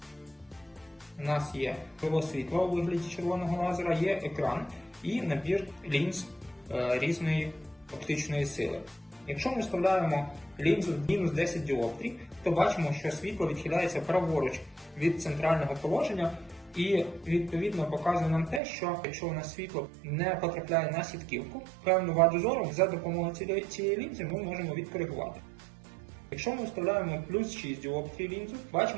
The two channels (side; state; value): left; drops out; at 18.6 s